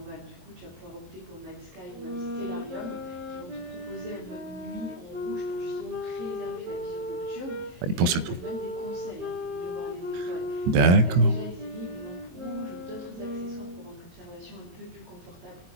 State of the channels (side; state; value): left; late; 23 ms